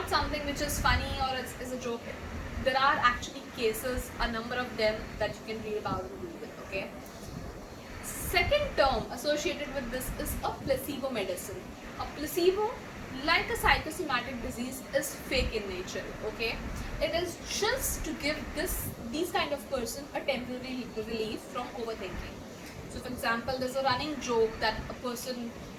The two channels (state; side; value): identical; both; correlation 1.00